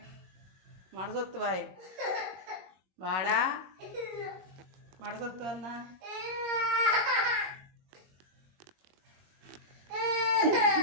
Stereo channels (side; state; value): left; late; 21 ms